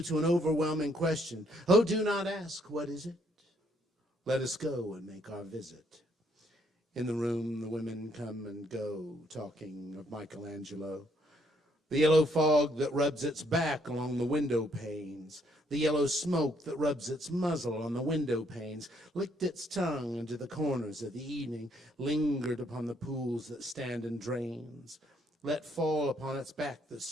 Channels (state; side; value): normal; both; correlation 0.69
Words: to an overwhelming question. Oh, do not ask, what is it? Let us go and make our visit. In the room, the women come and go, talking of Michelangelo. The yellow fog that rubs its back along the window panes, the yellow smoke that rubs its muzzle on the window panes, licked its tongue into the corners of the evening, lingered upon the pools that stand in drains, let fall upon its back the